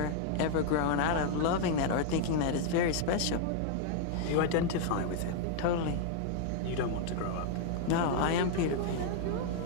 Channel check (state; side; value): different; both; correlation 0.00